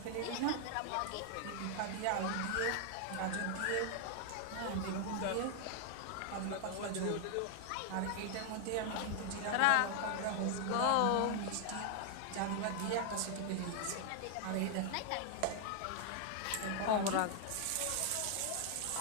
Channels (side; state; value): both; different; correlation 0.00